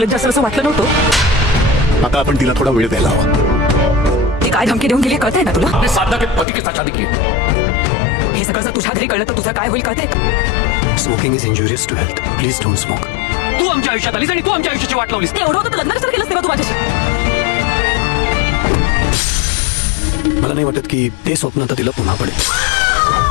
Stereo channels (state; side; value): drops out; right; at 6.5 s